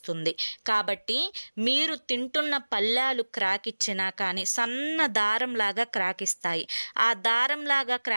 కాబట్టి మీరు తింటున్న పళ్ళాలు క్రాక్ ఇచ్చినా కానీ సన్న దారంలాగా క్రాక్ ఇస్తాయి. ఆ దారంలాగా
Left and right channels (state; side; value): inverted; both; correlation -1.00